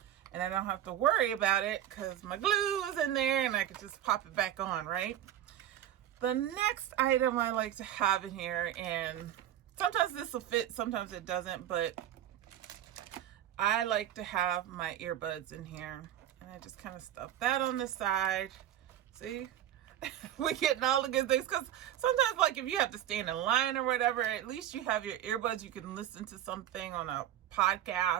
and I don't have to worry about it because my glue is in there and I can just pop it back on, right? The next item I like to have in here, and sometimes this will fit, sometimes it doesn't, but I like to have my earbuds in here, and I just kind of stuff that on the side. See? We're getting all the good things, because sometimes, like, if you have to stand in line or whatever, at least you have your earbuds. You can listen to something on a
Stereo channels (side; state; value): left; quieter; 11.6 dB